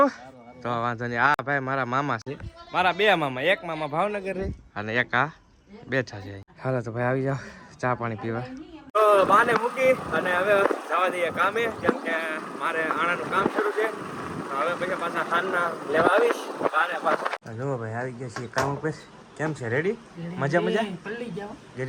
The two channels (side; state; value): both; identical; correlation 1.00